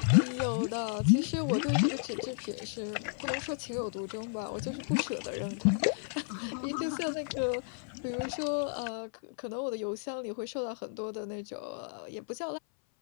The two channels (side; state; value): right; silent; 56 dB below the other